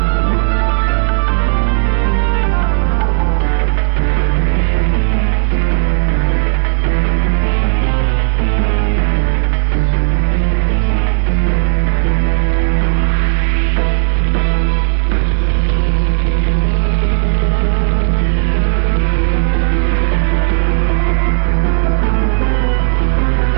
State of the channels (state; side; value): silent; left; digital silence